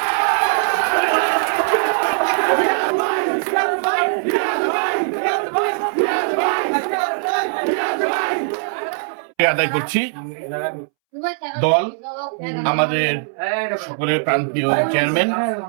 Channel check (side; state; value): left; silent; 66 dB below the other